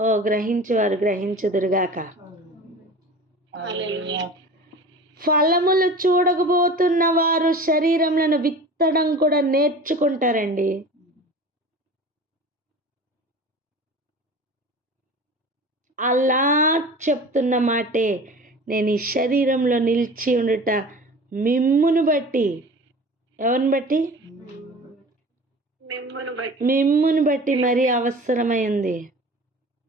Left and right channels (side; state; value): both; normal; correlation 0.38